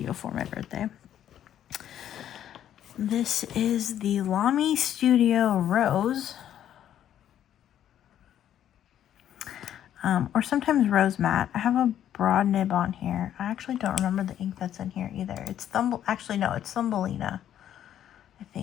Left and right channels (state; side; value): quieter; right; 10.7 dB